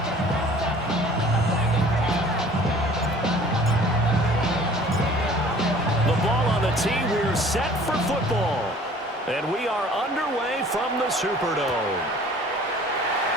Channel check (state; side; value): normal; both; correlation 0.50